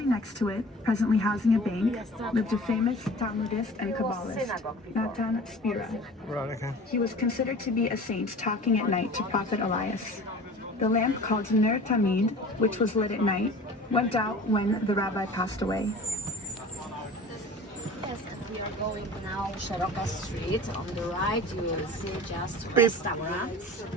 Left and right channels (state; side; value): normal; both; correlation 0.41